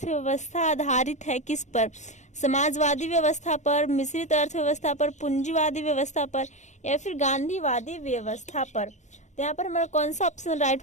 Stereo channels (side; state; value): right; late; 0.34 ms